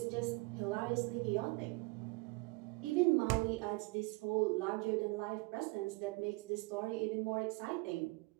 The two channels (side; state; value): left; quieter; 25.3 dB